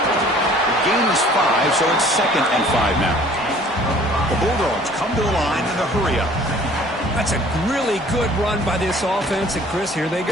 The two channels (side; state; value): both; normal; correlation 0.52